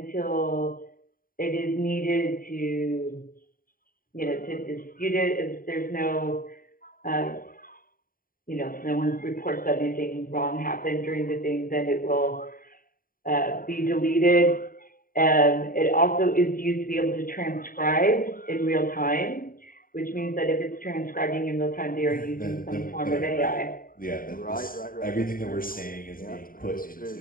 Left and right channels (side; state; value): right; late; 0.41 ms